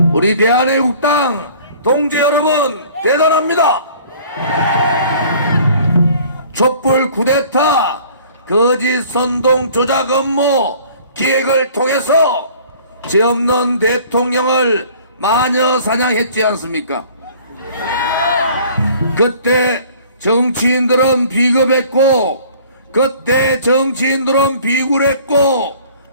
우리 대한애국당 동지 여러분 대단합니다. 촛불 쿠데타 거짓 선동 조작 업무 기획을 통해서 죄 없는 대통령을 마녀 사냥했지 않습니까? 그때 정치인들은 비겁했고, 그때 정치인들은 비굴했고,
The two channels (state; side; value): inverted; both; correlation -0.51